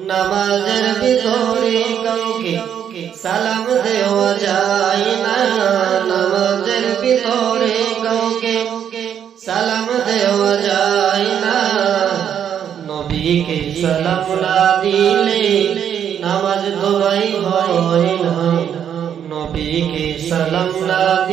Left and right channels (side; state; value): left; quieter; 8.9 dB